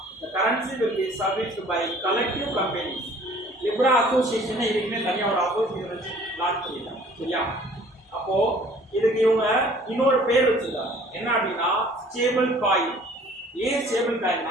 the currency will be serviced by collective companies. Libre association இதுக்குமே தனியாக ஒரு அசோசியேஷன் வச்சு லான்ச் பண்ணிட்டாங்க. சரியா? அப்போ இதுக்கு இவங்க இன்னொரு பேர் வச்சிருக்காங்க, என்ன அப்படின்னா ஸ்டேபிள் காயின். ஏன் ஸ்டேபிள்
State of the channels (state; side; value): normal; both; correlation 0.53